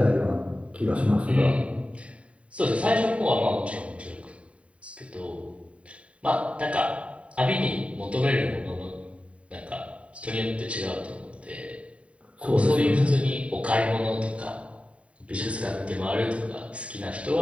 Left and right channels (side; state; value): left; late; 0.064 ms